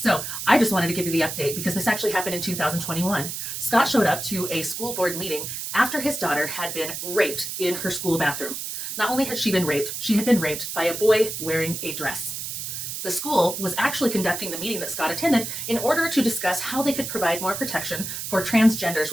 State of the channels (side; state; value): right; noise; hiss, 5 dB below the sound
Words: I just wanted to give you the update because this actually happened in 2021. Scott showed up to a school board meeting after his daughter had been raped in her school bathroom. Not only had she been raped, she had been raped by a boy wearing a dress. The school was actually conducting the meeting that Scott attended in order to discuss how they could provide more protection for transgenders